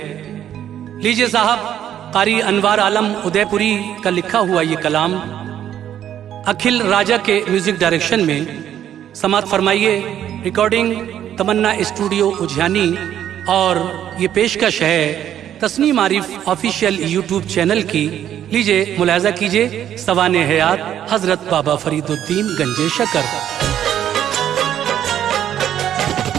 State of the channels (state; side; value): quieter; left; 10.6 dB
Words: लीजिए साहब, कारी अनवार आलम उदयपुरी का लिखा हुआ ये कलाम अखिल राजा के म्यूजिक डायरेक्शन में समात फरमाइए। रिकॉर्डिंग तमन्ना स्टूडियो उज्जैनी और ये पेशकश है Tasneem Arif official YouTube channel की। लीजिए मुलाहिजा कीजिए सवाने हयात हजरत बाबा फरीदुद्दीन गंजे शकर।